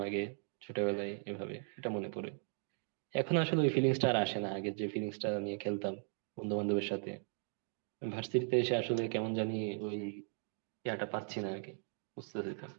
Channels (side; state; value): left; silent; 53 dB below the other